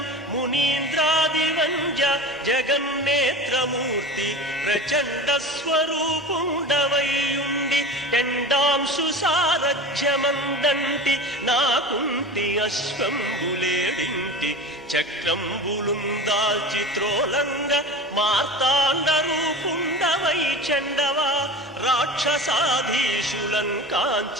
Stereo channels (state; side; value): normal; both; correlation 0.32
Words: మునీంద్రాదివంజ జగన్నేత్రమూర్తి ప్రచండ స్వరూపుండవైయుండి ఎండాంశు సారథ్యమందంటి నాకుంటి అశ్వంబులేడింటి చక్రంబులుం దాల్చి త్రోలంగ మార్తాండ రూపుండవై చండవా రాక్షసాధీశులం